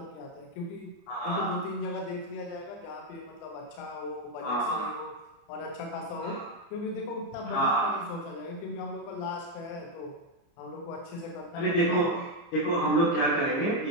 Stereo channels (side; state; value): right; late; 30 ms